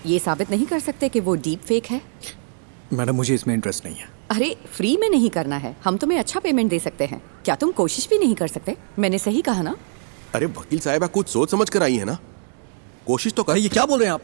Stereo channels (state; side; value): silent; left; digital silence